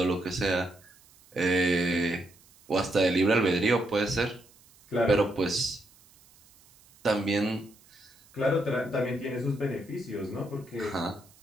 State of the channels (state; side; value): noise; right; hiss, 28 dB below the sound